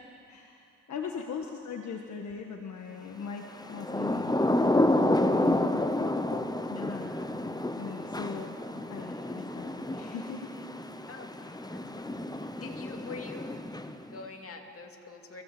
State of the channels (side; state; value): both; normal; correlation 0.76